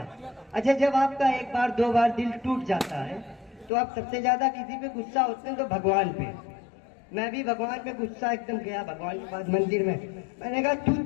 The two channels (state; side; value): drops out; right; at 3.7 s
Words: अच्छा, जब आपका एक बार दो बार दिल टूट जाता है तो आप सबसे ज्यादा किसी पे गुस्सा होते हैं तो भगवान पे। मैं भी भगवान पे गुस्सा एकदम गया भगवान के पास मंदिर में। मैंने कहा तू